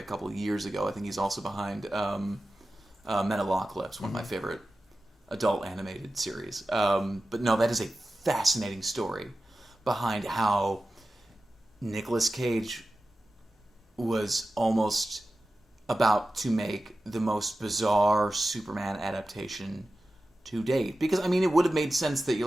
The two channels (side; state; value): both; normal; correlation 0.94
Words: couple of years ago. I think he's also behind Metalocalypse, one of my favorite adult animated series. But no, that is a fascinating story behind how Nicolas Cage was almost about to make the most bizarre Superman adaptation to date. Because, I mean, it would have made sense that you're